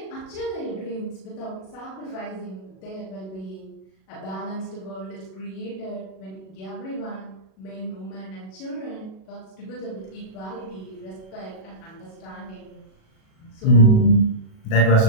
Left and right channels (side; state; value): right; late; 37 ms